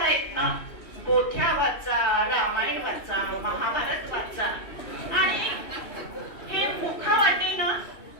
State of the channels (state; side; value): late; right; 2.7 ms